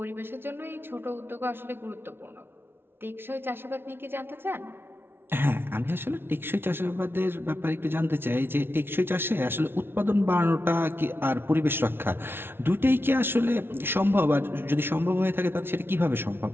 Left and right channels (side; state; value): left; late; 0.11 ms